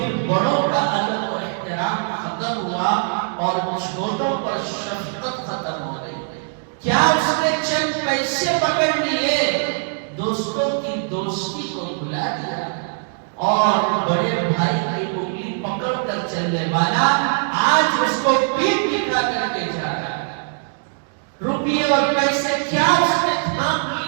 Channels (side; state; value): left; silent; 65 dB below the other